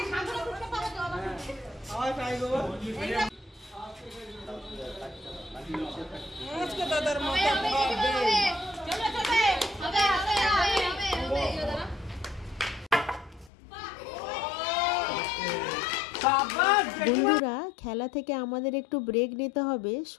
বন্ধুরা, খেলা থেকে আমাদের একটু ব্রেক নিতে হবে,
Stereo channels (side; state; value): right; drops out; at 13.5 s